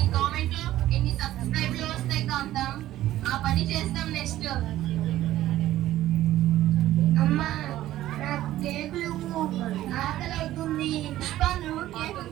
ఆ పని చేస్తాం నెక్స్ట్. అమ్మా నాకు కేకులు ఆకలి అవుతుంది. పుష్ప, నువ్వు కేక్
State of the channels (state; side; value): quieter; left; 14.2 dB